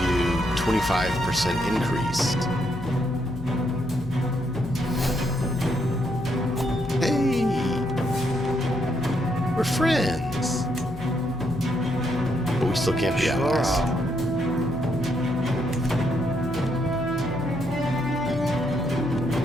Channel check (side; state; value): left; noise; hum, 13 dB below the sound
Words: 25% increase. Hey, we're friends, but we still can't be allies.